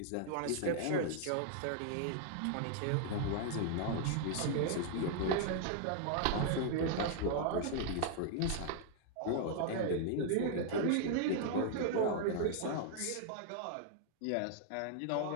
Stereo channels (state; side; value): different; both; correlation -0.01